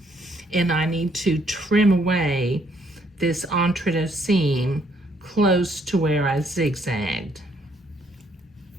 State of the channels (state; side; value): normal; both; correlation 0.68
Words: and I need to trim away this entrecôte seam close to where I zigzagged.